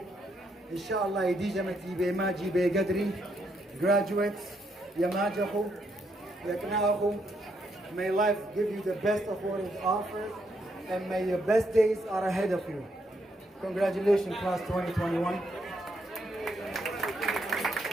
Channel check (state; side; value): normal; both; correlation 0.76